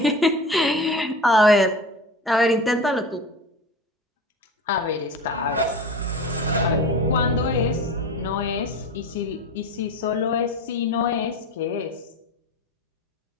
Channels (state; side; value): normal; both; correlation 0.31